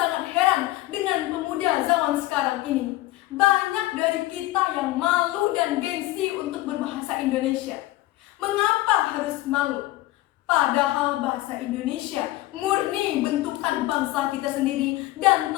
heran dengan pemuda zaman sekarang ini. Banyak dari kita yang malu dan gengsi untuk berbahasa Indonesia. Mengapa harus malu? Padahal bahasa Indonesia murni bentukan bangsa kita sendiri dan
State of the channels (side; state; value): right; quieter; 17.5 dB